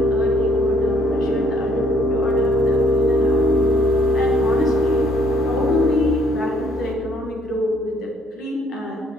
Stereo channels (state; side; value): normal; both; correlation 0.65